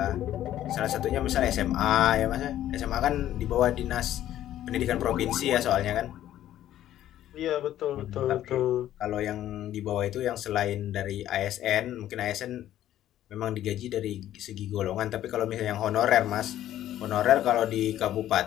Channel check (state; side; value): quieter; right; 12.4 dB